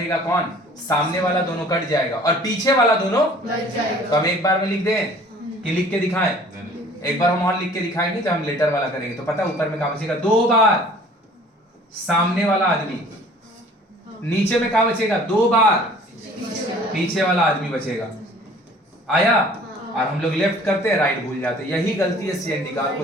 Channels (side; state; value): both; normal; correlation 0.51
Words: कौन? सामने वाला दोनों कट जाएगा और पीछे वाला दोनों बच जाएगा। तो हम एक बार में लिख दें कि लिख के दिखाएं? एक बार हम और लिख के दिखाएंगे जब हम लेटर वाला करेंगे, तो पता ऊपर में क्या बचेगा? 2 बार सामने वाला आदमी, नीचे में क्या बचेगा? 2 बार पीछे वाला आदमी बचेगा। आया? और हम लोग लेफ्ट करते हैं, राइट भूल जाते हैं। यही गलती है CND का,